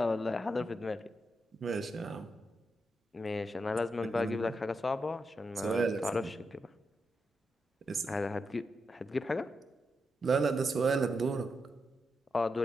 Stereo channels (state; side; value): normal; both; correlation 0.85